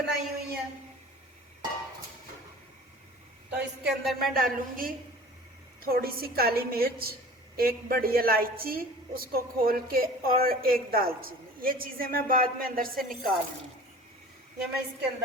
हुई है। तो इसके अंदर मैं डालूंगी थोड़ी सी काली मिर्च, एक बड़ी इलायची उसको खोल के, और एक दालचीनी। ये चीज़ें मैं बाद में अंदर से निकाल लूँगी, ये मैं इसके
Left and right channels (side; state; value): both; normal; correlation 0.43